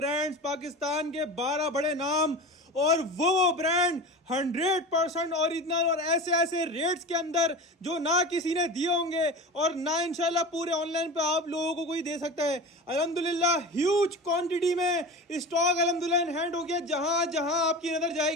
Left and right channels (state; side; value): normal; both; correlation 0.30